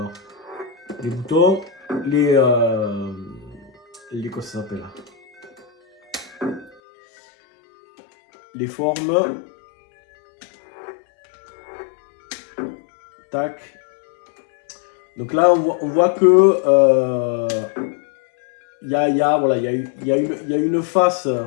boutons, quoi ça s'appelle, les formes, tac. Donc là on voit que il y a une face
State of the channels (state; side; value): drops out; right; at 6.8 s